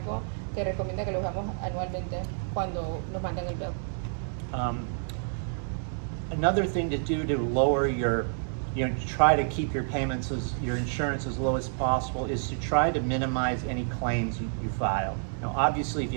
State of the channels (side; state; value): left; silent; digital silence